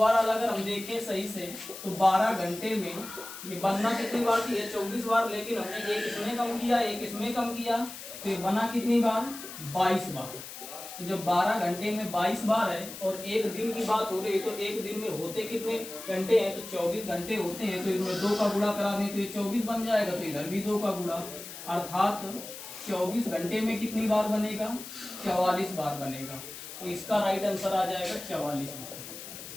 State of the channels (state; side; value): noise; left; hiss, 12 dB below the sound